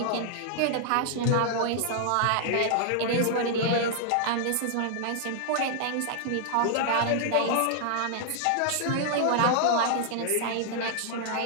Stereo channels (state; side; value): different; both; correlation -0.01